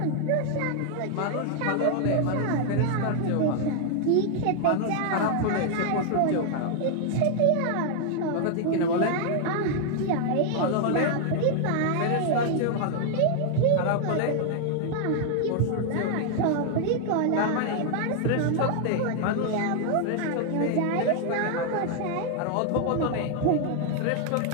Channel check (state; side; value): different; both; correlation 0.00